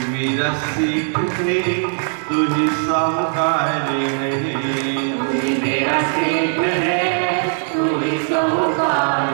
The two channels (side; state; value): left; silent; 60 dB below the other